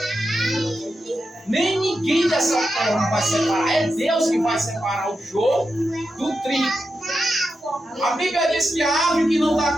Nem ninguém dessa terra vai separar. É Deus que vai separar o joio do trigo. A Bíblia diz que a árvore que não dá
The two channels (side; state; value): both; normal; correlation 0.88